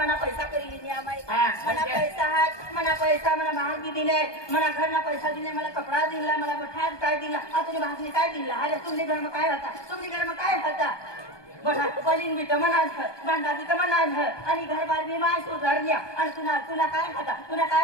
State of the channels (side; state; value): right; late; 1.2 ms